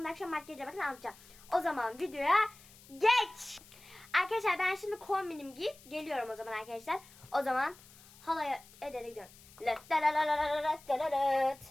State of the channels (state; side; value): noise; left; hiss, 23 dB below the sound